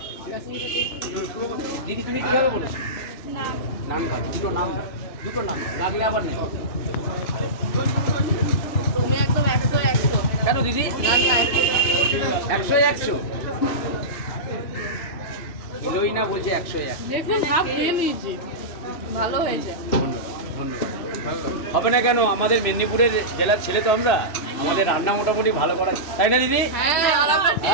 দিদি তুমি কীভাবে বলেছো? নাম খাও, দুটো নাম লাগলে আবার নেই। তুমি একদম 100 কেন দিদি? 100 কিলোই না, বলছে 101। দেখুন হাফ দিয়ে নিয়েছি, ভালো হয়েছে। ধন্যবাদ। হবে না কেন, আমাদের মেদিনীপুরের জেলার ছেলে তো আমরা, আমাদের রান্না মোটামুটি ভালো করা, তাই না দিদি? হ্যাঁ, আর আমরা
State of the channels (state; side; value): late; right; 2.9 ms